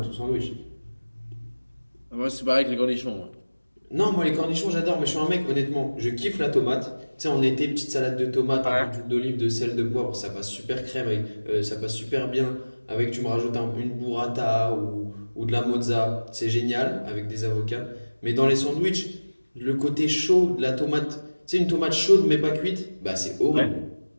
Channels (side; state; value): both; inverted; correlation -1.00